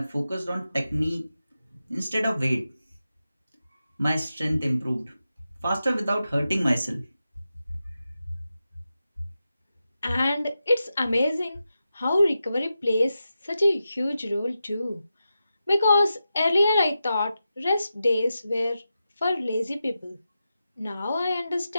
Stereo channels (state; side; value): inverted; both; correlation -0.90